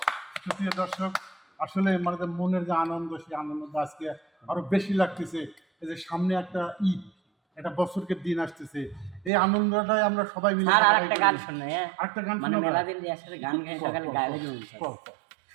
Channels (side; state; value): left; drops out; at 9.3 s